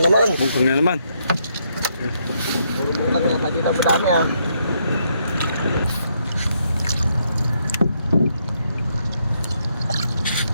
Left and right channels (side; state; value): both; inverted; correlation -0.75